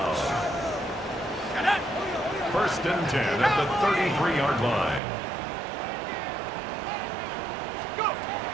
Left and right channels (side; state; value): left; drops out; at 5.0 s